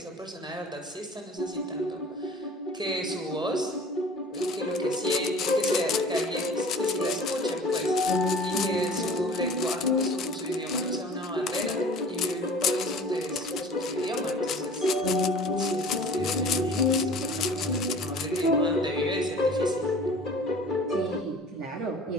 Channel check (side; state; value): both; normal; correlation 0.45